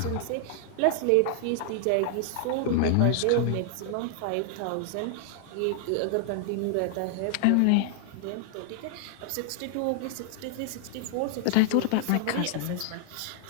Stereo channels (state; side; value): different; both; correlation 0.00